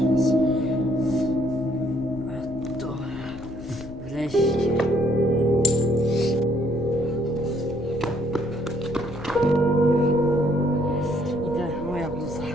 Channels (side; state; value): left; noise; rumble, 16 dB below the sound